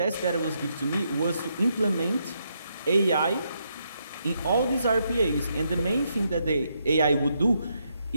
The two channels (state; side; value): inverted; both; correlation -0.78